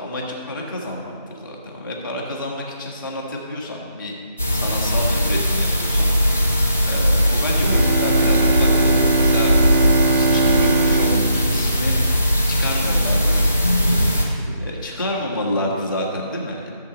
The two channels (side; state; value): both; inverted; correlation -0.75